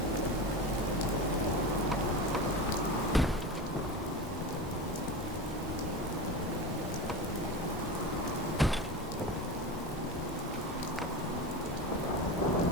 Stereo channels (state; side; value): normal; both; correlation 0.25